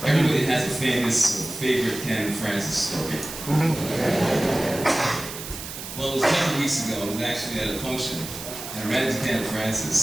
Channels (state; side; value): noise; right; hiss, 10 dB below the sound